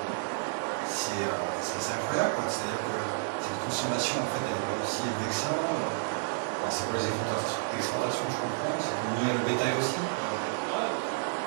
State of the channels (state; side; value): silent; left; 57 dB below the other